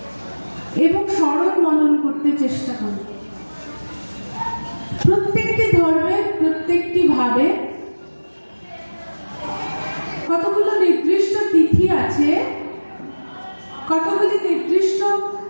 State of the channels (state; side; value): inverted; both; correlation -1.00